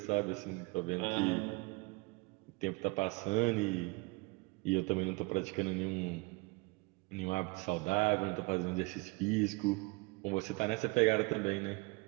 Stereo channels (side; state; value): left; quieter; 25.7 dB